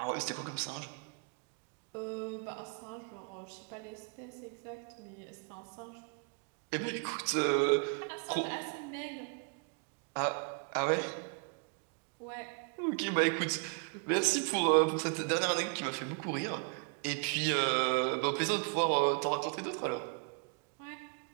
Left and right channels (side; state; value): left; quieter; 37.3 dB